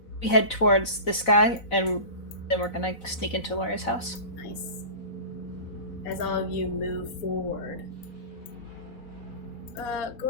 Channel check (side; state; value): right; late; 4.0 ms